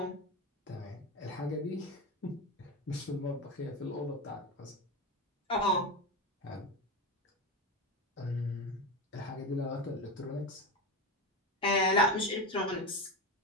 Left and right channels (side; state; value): both; normal; correlation 0.18